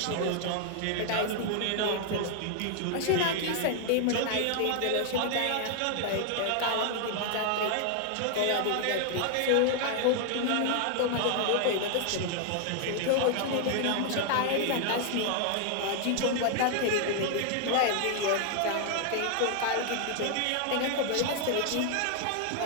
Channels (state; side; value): different; both; correlation 0.00